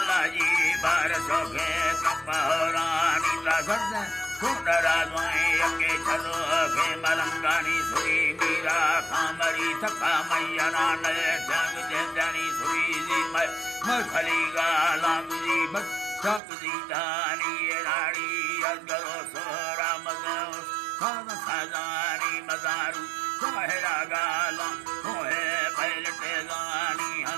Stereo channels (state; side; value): drops out; left; at 16.4 s